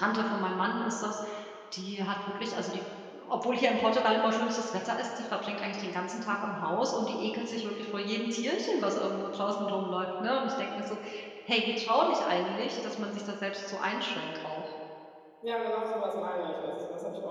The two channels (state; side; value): identical; both; correlation 1.00